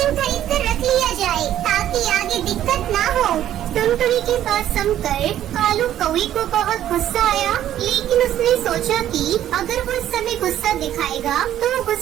खरीद कर रख लिया जाए ताकि आगे दिक्कत ना हो। टुनटुनी की बात सुनकर कालू कौवे को बहुत गुस्सा आया, लेकिन उसने सोचा कि अगर वो इस समय गुस्सा दिखाएगा तो वो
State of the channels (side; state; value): left; quieter; 11.8 dB